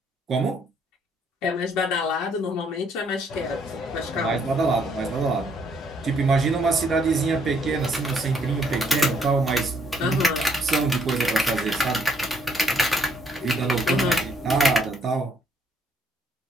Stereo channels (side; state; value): both; normal; correlation 0.68